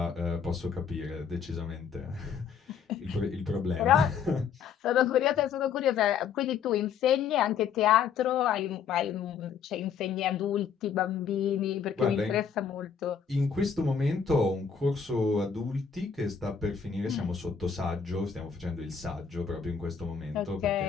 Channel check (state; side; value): quieter; right; 6.8 dB